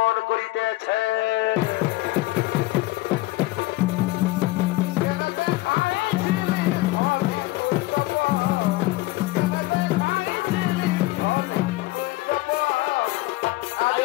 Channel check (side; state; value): right; quieter; 19.4 dB